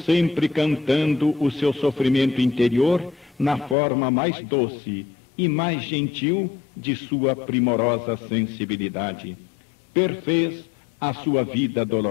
cantando o seu sofrimento interior na forma mais doce e mais gentil de sua primorosa sensibilidade. Perfez a sua vida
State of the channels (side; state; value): right; drops out; at 3.8 s